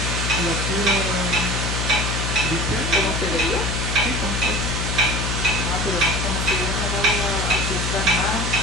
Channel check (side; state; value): left; noise; hum, 1 dB below the sound